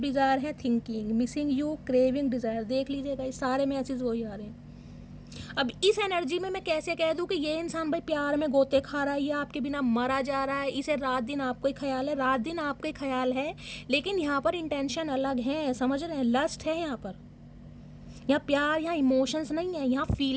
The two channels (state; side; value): identical; both; correlation 1.00